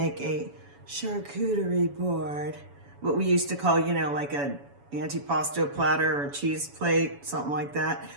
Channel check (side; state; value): left; late; 7.1 ms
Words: a charcuterie board, what we used to call, you know, like a antipasto platter or cheese plate, something like that.